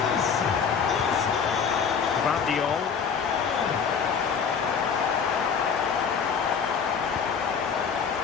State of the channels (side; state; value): right; quieter; 6.5 dB